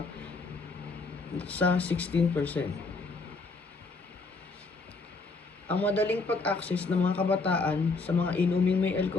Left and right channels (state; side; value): quieter; right; 3.9 dB